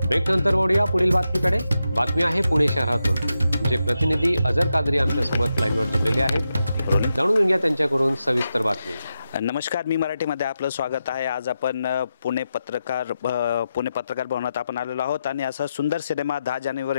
Break नंतर वळूया पुढील बातमीकडे। बातमी आहे पुणे शहरातून। आमचे प्रतिनिधी अजर कादरी आमच्या सोबत लाईनवर जोडलेले आहेत। जाणून घेऊया त्यांच्याकडून सविस्तर बातमी। नमस्कार, मी मराठीमध्ये आपलं स्वागत आहे। आज आपण पुणे पत्रकार भवनात आपण आलेलो आहोत आणि असा सुंदर सिनेमा 10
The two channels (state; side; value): inverted; both; correlation -0.88